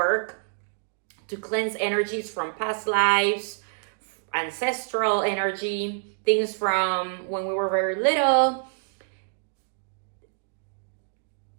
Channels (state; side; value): silent; left; digital silence